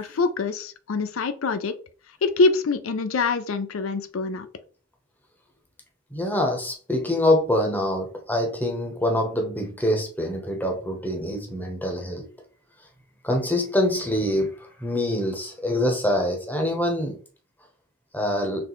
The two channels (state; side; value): normal; both; correlation 0.39